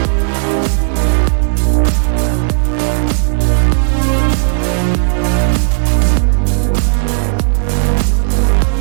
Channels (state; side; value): silent; left; digital silence